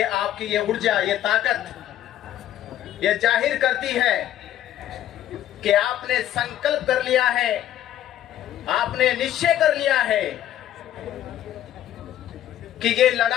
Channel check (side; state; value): right; quieter; 12.0 dB